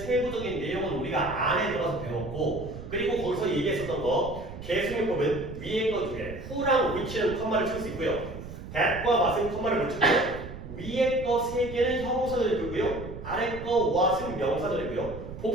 내용은 우리가 안에 들어가서 배웠고 그리고 거기서 얘기했었던 거 계승용법은 위에 거 두 개, who랑 which는 컴마를 칠 수 있고요. that과 what은 컴마를 못 치고요. 위에 거 세 개는 형용사절이고요. 아래 거 what은 명사절이고요.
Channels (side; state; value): right; noise; rumble, 11 dB below the sound